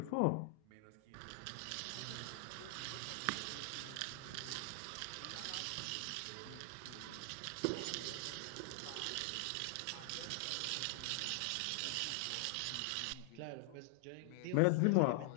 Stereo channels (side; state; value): both; different; correlation 0.00